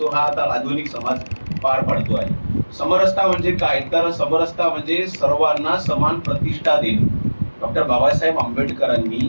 हा आता आधुनिक समाज पार पाडतो आहे. समरसता म्हणजे काय, तर समरसता म्हणजे सर्वांना समान प्रतिष्ठा देणे. डॉक्टर बाबासाहेब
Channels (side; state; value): both; inverted; correlation -1.00